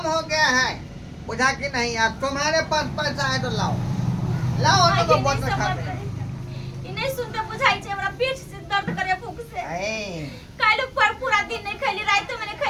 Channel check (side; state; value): both; identical; correlation 1.00